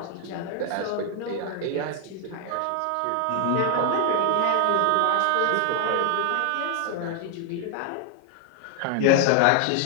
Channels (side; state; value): both; different; correlation 0.00